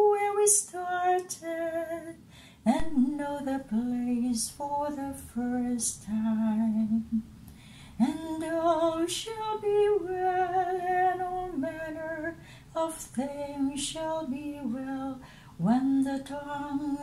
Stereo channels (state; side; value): identical; both; correlation 1.00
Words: we started and know the place for the first time. And all all shall be well, and all manner of things shall be well, when the